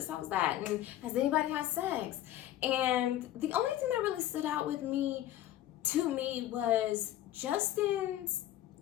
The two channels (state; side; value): quieter; right; 13.1 dB